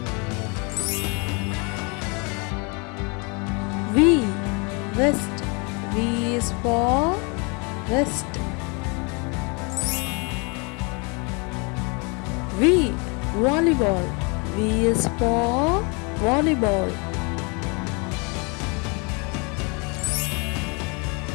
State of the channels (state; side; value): quieter; right; 31.7 dB